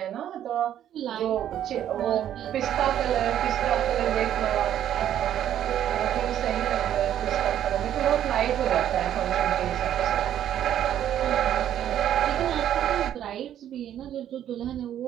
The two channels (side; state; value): left; quieter; 10.8 dB